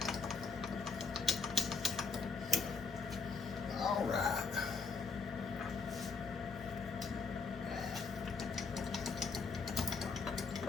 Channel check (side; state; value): right; quieter; 4.7 dB